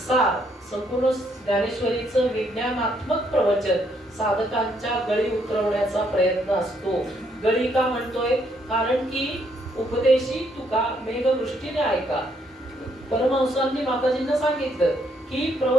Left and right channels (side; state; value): both; normal; correlation 0.71